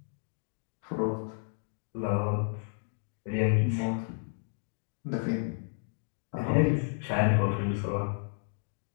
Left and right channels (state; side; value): silent; right; digital silence